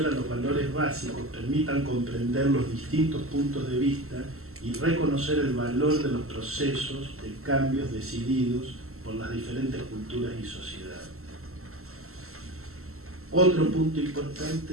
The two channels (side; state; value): left; late; 0.63 ms